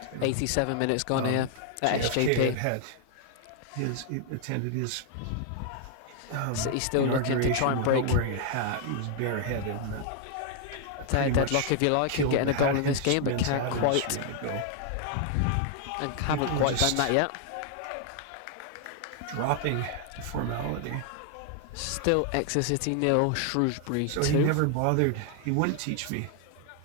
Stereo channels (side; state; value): both; different; correlation 0.00